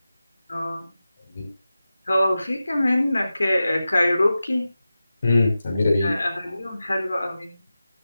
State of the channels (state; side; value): inverted; both; correlation -0.94